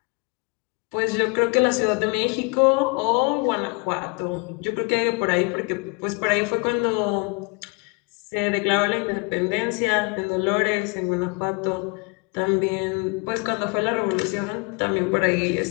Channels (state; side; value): quieter; right; 32.1 dB